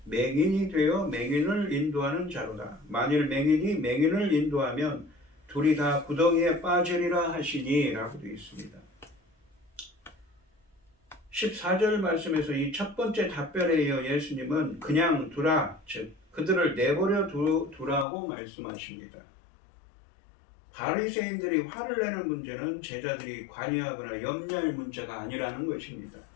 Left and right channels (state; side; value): drops out; right; at 18.1 s